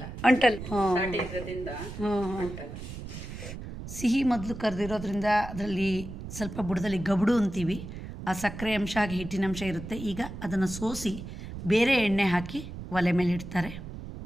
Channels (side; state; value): right; noise; rumble, 10 dB below the sound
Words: ಅಂಟಲ್. ಸಿಹಿ ಮೊದಲು ಕರೆದಿರೋದ್ರಿಂದ ಅದರಲ್ಲಿ ಸ್ವಲ್ಪ ಬುಡದಲ್ಲಿ ಗಬಡು ಅಂತೀವಿ. ಆ ಸಕ್ಕರೆ ಅಂಶ ಹಾಗೆ ಹಿಟ್ಟಿನ ಅಂಶ ಇರುತ್ತೆ. ಈಗ ಅದನ್ನು ಸೋಸಿ ಬೇರೆ ಎಣ್ಣೆ ಹಾಕಿ ಒಲೆ ಮೇಲೆ ಇಡ್ತಾರೆ.